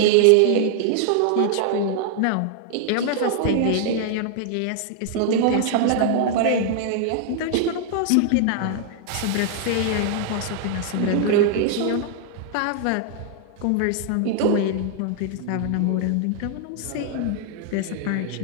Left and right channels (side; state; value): both; different; correlation 0.00